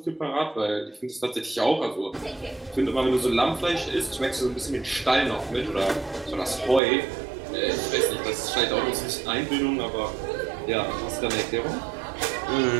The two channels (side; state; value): left; drops out; at 6.8 s